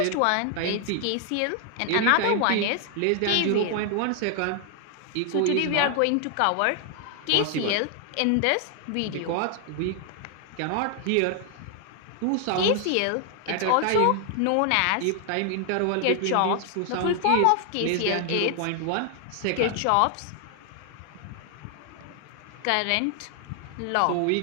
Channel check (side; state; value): both; different; correlation 0.00